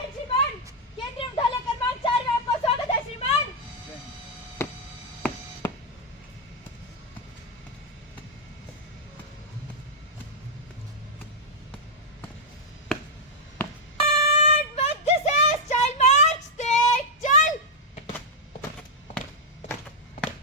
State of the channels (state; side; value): normal; both; correlation -0.03